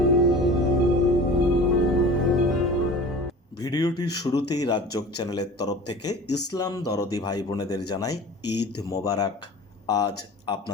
ভিডিওটির শুরুতেই রাজযোগ চ্যানেলের তরফ থেকে ইসলাম দরদি ভাই বোনেদের জানাই ঈদ মোবারক। আজ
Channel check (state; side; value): normal; both; correlation 0.39